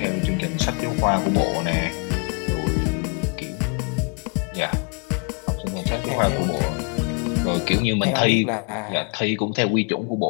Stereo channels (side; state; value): right; quieter; 34.8 dB